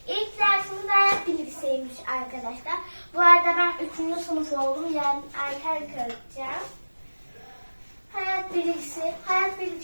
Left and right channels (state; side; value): inverted; both; correlation -1.00